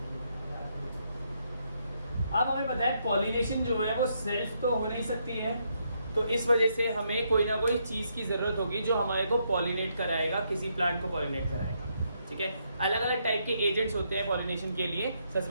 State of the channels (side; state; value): both; inverted; correlation -0.77